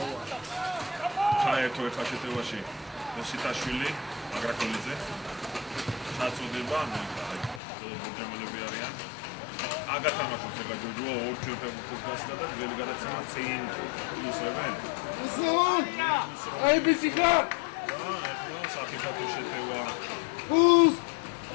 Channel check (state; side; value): drops out; right; at 7.6 s